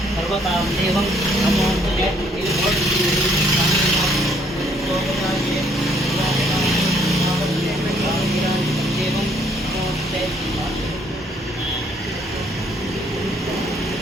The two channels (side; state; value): both; normal; correlation 0.65